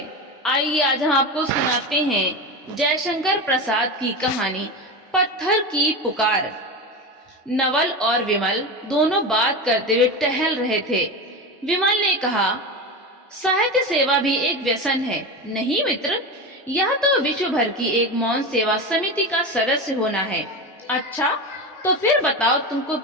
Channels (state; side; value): normal; both; correlation 0.22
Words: आइए आज हम आपको सुनाते हैं जयशंकर प्रसाद की कहानी पत्थर की पुकार। नवल और विमल दोनों बात करते हुए टहल रहे थे। विमल ने कहा, साहित्य सेवा भी एक व्यसन है नहीं मित्र? यह तो विश्व भर की एक मौन सेवा समिति का सदस्य होना है। अच्छा, तो फिर बताओ तुमको